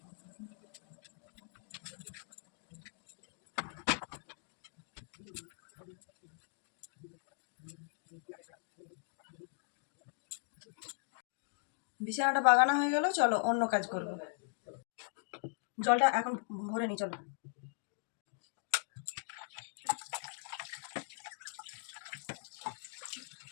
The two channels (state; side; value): silent; right; digital silence